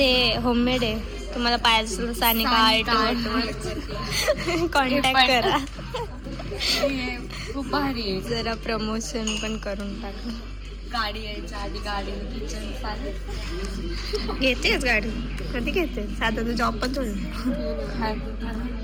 होममेड आहे. तुम्हाला पाहिजे असेल तर सानिका आर्ट कॉन्टॅक्ट करा. खूप भारी आहे. जरा प्रमोशन पण करून टाका. गाडी यायच्या आधी गाडी किचन चालेल. घेतेच गाडी कधी घेते साधा तू जॉब पण थोडी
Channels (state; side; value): identical; both; correlation 1.00